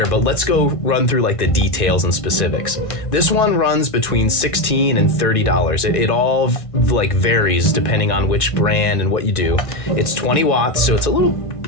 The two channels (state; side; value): late; right; 1.9 ms